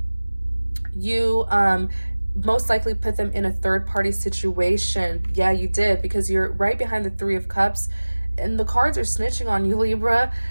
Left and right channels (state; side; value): inverted; both; correlation -1.00